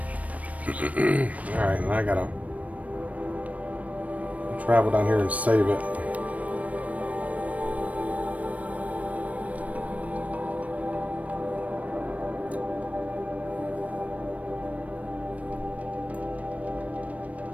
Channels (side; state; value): left; late; 0.068 ms